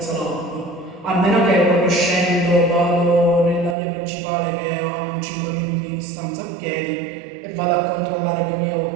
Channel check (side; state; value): left; drops out; at 3.8 s